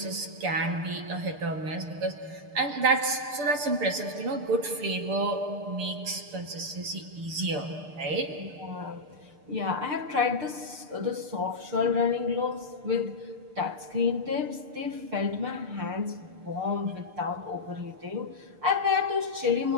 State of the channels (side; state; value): left; late; 6.7 ms